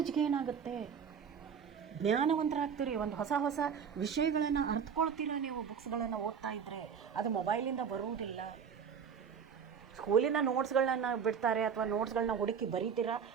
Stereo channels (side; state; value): left; quieter; 7.0 dB